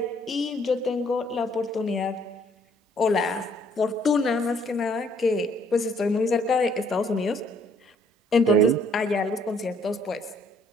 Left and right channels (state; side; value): normal; both; correlation 0.64